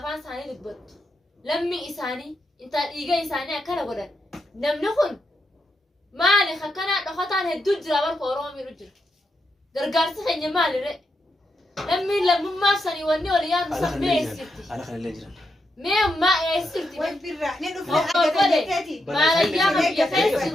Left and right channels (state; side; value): normal; both; correlation 0.83